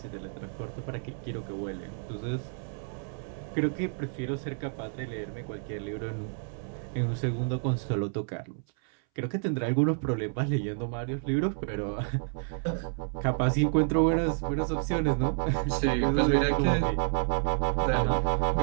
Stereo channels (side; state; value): left; silent; 58 dB below the other